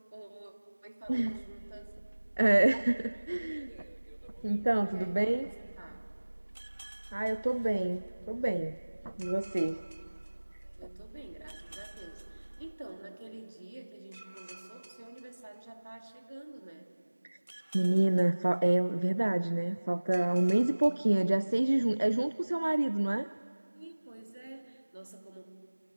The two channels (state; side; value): inverted; both; correlation -1.00